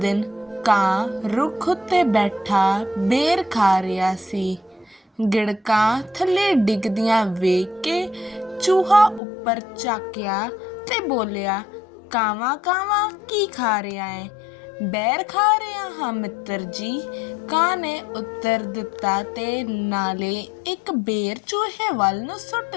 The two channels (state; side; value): drops out; right; at 9.2 s